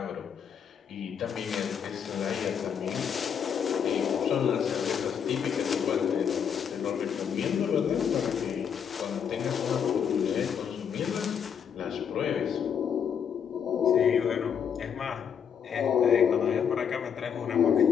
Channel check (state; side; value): quieter; right; 7.7 dB